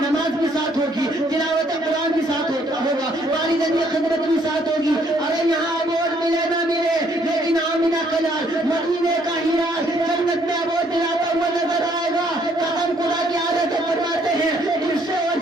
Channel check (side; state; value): both; normal; correlation 0.66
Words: نماز بھی ساتھ ہوگی, تلاوت قرآن بھی ساتھ ہوگا, والدین کی خدمت بھی ساتھ ہوگی. ارے یہاں ایوارڈ ملے نہ ملے لیکن آمینہ کا لال مدینے کا ہیرا جنت میں ایوارڈ دلاتا ہوا نظر آئے گا. قسم خدا کی عادت فرماتے ہیں اس سے اور